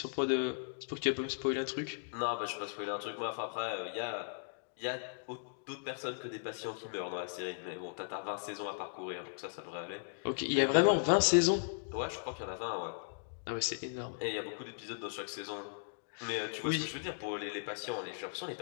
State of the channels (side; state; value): right; silent; digital silence